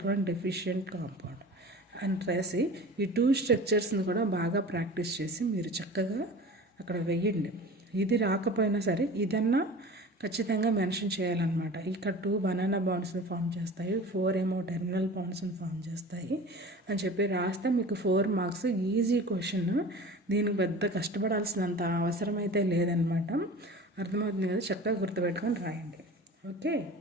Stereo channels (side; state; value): both; normal; correlation 0.38